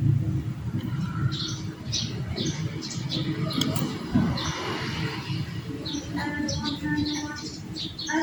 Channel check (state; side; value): identical; both; correlation 1.00